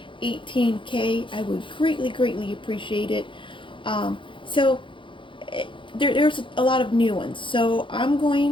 18K. I would greatly appreciate it. So there's a lot of new ones. So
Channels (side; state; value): right; late; 0.24 ms